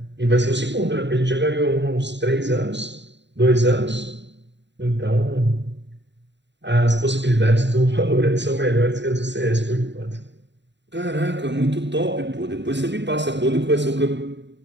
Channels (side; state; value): left; late; 0.52 ms